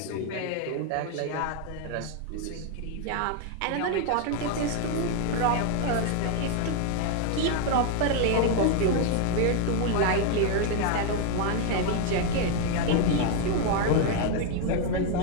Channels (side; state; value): both; different; correlation 0.00